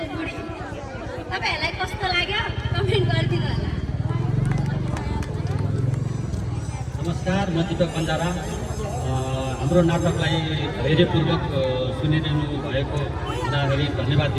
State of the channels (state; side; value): identical; both; correlation 1.00